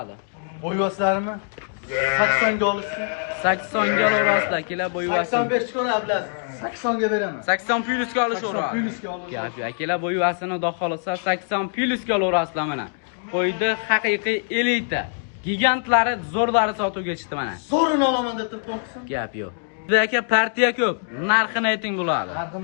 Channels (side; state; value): right; silent; digital silence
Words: Bo'yvoslarimi? 80 ga olursun. 80 ga olasizlar akalar, bo'yvasini. 85 ko'ra Abdulaziz. 80 ga beraman. 80 plyusga olishaveradi. 80 plyusga olursun. Gap akalar, bo'yvasini xudo xolasa 80 plyusga olasizlar mana. Qo'ydi haqiqiy elita. Gigantlari, zo'rlari sotuvga chiqdi mana. Zo'rini olaman deb turib qo'rqsin. Gap yo'q. Bizda aka partiya ko'p. Narxini ayting bo'ladi.